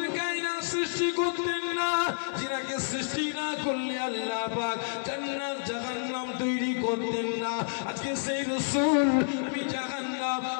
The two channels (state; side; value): silent; right; digital silence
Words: কায়নাত সৃষ্টি করতেন না, যিনাকে সৃষ্টি না করলে আল্লাহ পাক জান্নাত জাহান্নাম তৈরি করতেন না। আজকে সেই রাসূল আমি জাহান্নাম